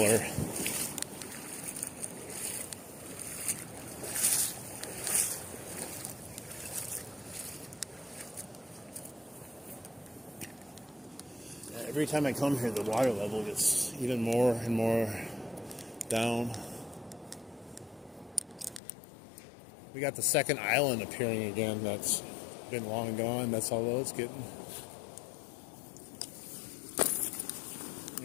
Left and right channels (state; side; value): drops out; right; at 18.8 s